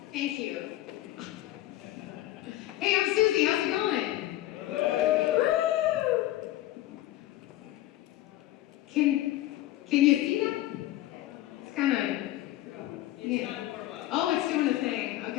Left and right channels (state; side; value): quieter; right; 15.0 dB